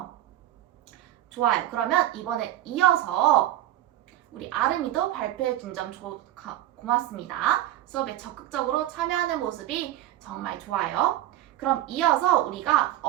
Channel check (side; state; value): left; quieter; 13.5 dB